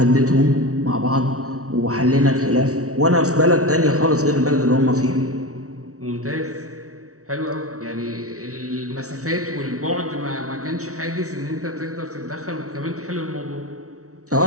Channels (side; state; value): left; late; 0.65 ms